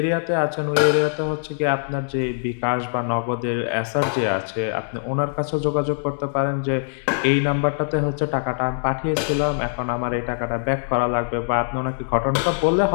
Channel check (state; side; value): silent; right; digital silence